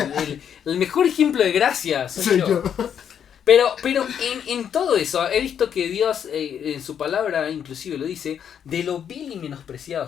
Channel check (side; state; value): right; quieter; 8.5 dB